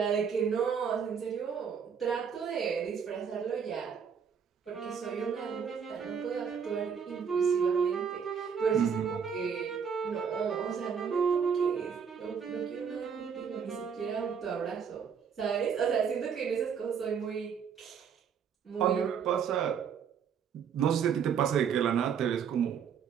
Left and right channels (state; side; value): quieter; left; 7.1 dB